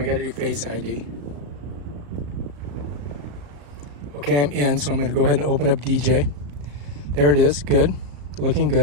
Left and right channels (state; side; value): late; left; 35 ms